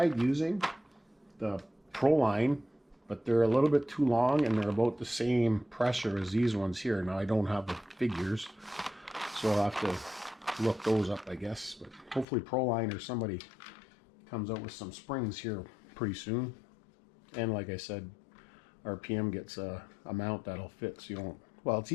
using the Proline, but they're a little bit too long and they're about the same pressure as these ones here. Now I don't have the figures, so I'll have to look those up, I guess. But hopefully Proline or somebody comes out with some springs here pretty soon. And like I said, RPM gets a mount that'll fit, so you don't, well, it's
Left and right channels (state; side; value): drops out; right; at 12.2 s